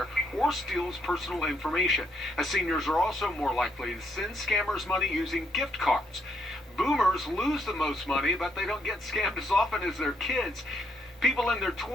or steals personal information. As seniors are also more likely to send scammers money using gift cards. Boomers lose the most money, but they don't get scammed as often as their kids. People in their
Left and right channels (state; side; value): normal; both; correlation 0.74